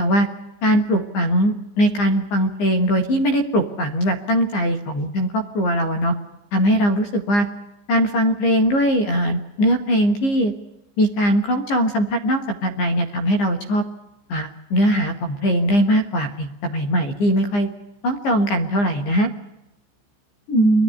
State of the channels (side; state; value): right; late; 15 ms